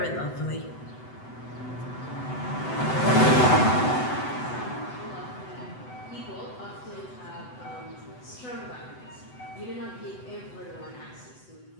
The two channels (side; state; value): right; late; 7.9 ms